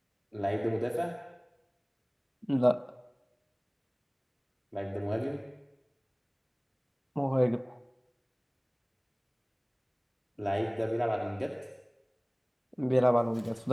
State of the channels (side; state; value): both; identical; correlation 1.00